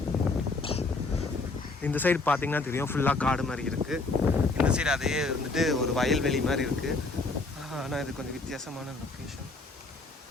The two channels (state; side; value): quieter; right; 3.5 dB